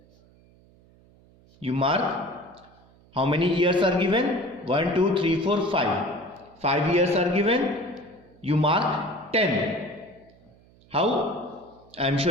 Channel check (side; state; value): right; noise; hum, 28 dB below the sound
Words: You mark how many years are given? 1, 2, 3, 4, 5. 5 years are given. You mark 10. How? I am